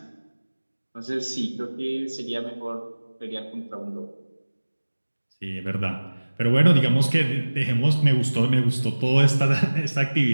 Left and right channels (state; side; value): inverted; both; correlation -1.00